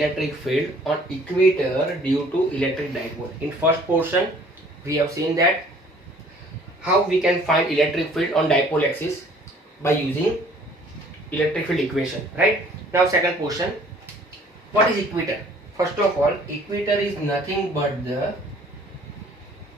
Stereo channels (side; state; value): both; normal; correlation 0.55